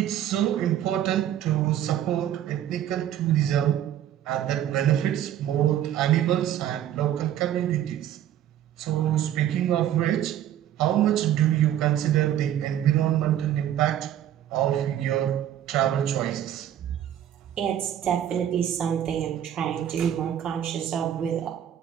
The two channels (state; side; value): quieter; left; 11.0 dB